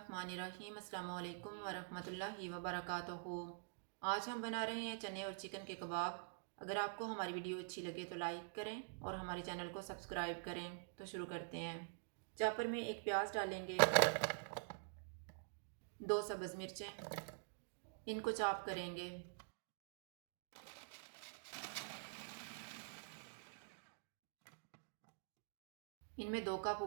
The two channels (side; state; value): left; silent; digital silence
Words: अस्सलामु अलैकुम वरहमतुल्लाहि वबरकातुहू। आज हम बना रहे हैं चने और चिकन के कबाब। अगर आपको हमारी वीडियो अच्छी लगे तो लाइक करें और हमारे चैनल को सब्सक्राइब करें। तो शुरू करते हैं। चापर में एक प्याज डालेंगे, 2 सब्ज़ मिर्चें, इनको चॉप करेंगे। इनमें 2 कप